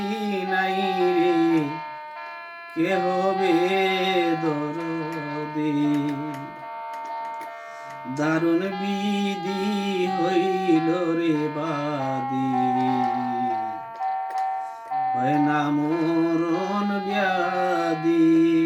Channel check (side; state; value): both; identical; correlation 1.00